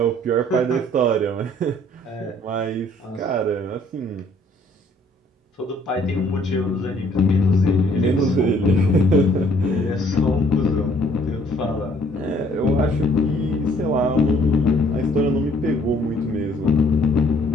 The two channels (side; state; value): both; normal; correlation 0.61